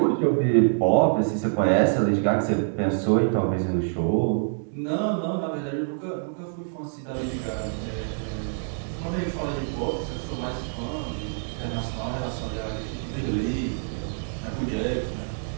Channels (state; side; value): silent; left; digital silence